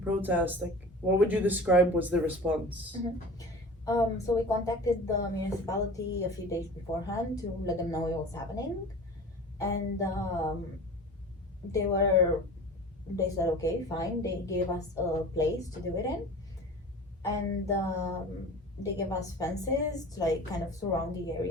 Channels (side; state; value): both; normal; correlation 0.38